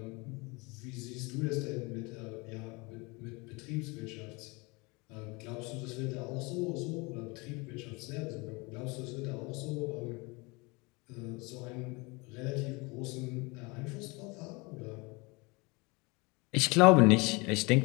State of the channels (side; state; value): right; quieter; 27.0 dB